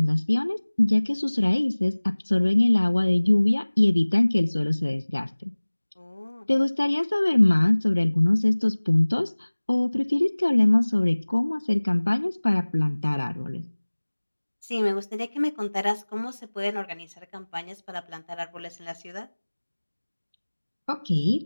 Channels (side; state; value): both; inverted; correlation -1.00